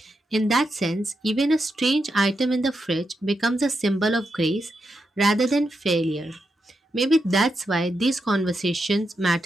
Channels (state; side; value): normal; both; correlation 0.85